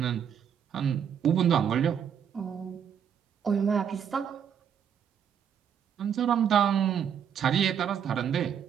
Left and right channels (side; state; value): left; quieter; 8.2 dB